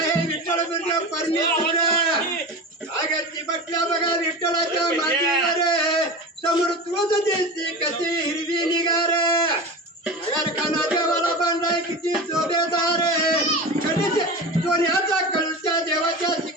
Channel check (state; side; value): normal; both; correlation 0.28